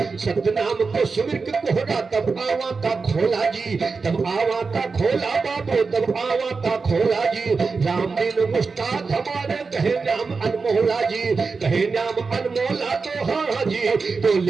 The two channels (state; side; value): quieter; left; 4.6 dB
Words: सत्य नाम को सुमिर के कोहरा तब आवा का खोला जी। तब आवा का खोला बाबू तब आवा का खोला जी। राम दिन मुस्ताद हमारे कहे नाम अनमोला जी। कहे नाम अनमोला तो हाँ जी। तो